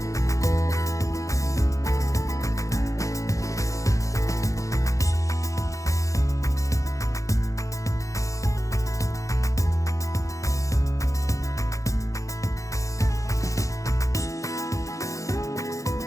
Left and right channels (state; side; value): late; right; 0.16 ms